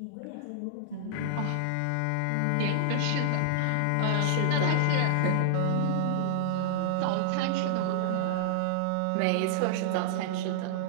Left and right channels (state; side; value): different; both; correlation -0.01